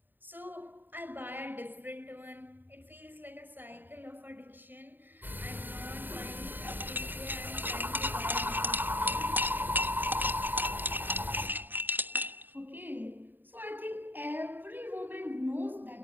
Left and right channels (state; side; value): late; left; 0.092 ms